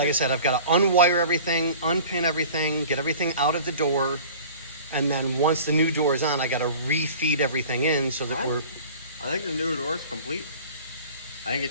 I said, I've got to unwire everything, unpin everything, get everything out of the door. And then once the new door is on, I got to refeed everything in so that I think the new door is complete. I think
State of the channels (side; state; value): both; inverted; correlation -0.43